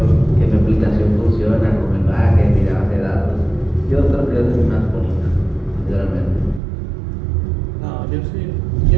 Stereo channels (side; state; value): left; drops out; at 6.6 s